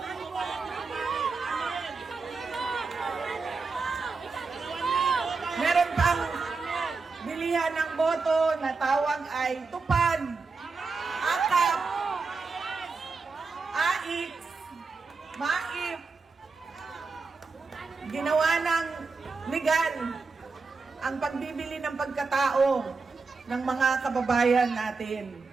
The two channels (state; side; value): quieter; left; 4.3 dB